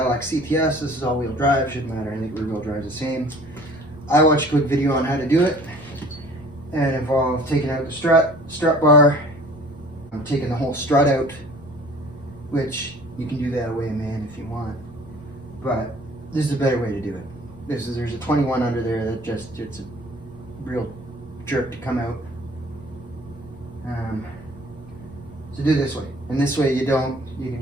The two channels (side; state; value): both; normal; correlation 0.50